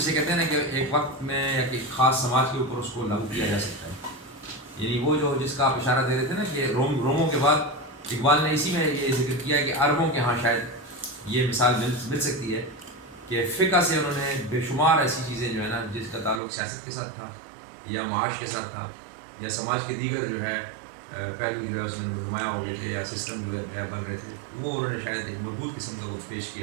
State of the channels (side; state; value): left; drops out; at 16.4 s